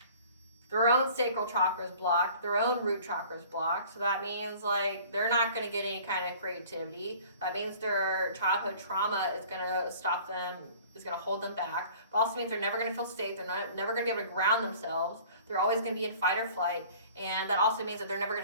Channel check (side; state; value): both; inverted; correlation -0.48